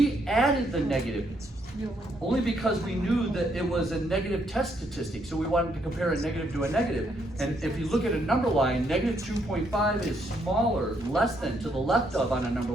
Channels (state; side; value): normal; both; correlation 0.73